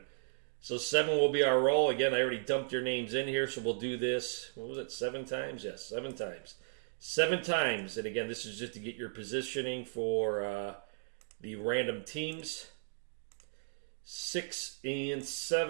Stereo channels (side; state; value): left; silent; digital silence